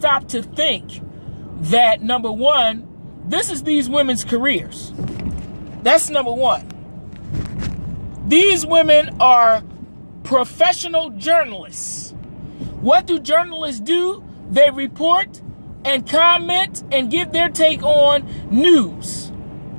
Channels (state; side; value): inverted; both; correlation -1.00